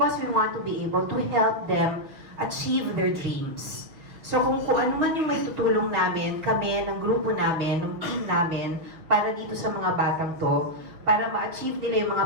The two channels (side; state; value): left; late; 6.2 ms